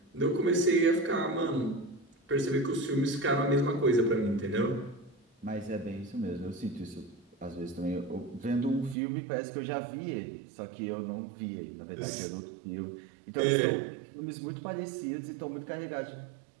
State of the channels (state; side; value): drops out; left; at 9.0 s